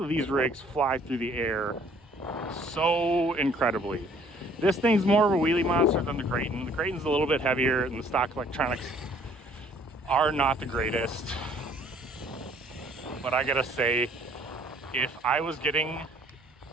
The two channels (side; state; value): both; normal; correlation 0.58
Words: these rigs fly through the air so incredibly. This thing's more of a wheelie monster than the Creighton. The Creighton's a little bit heavier and the stock electronics are not the greatest. But I gotta say, if I was getting